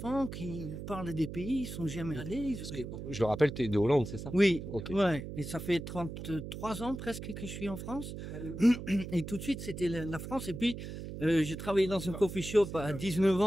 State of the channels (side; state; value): right; noise; hum, 8 dB below the sound